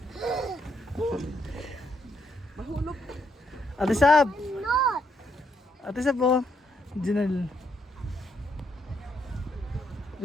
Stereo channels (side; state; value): both; normal; correlation 0.75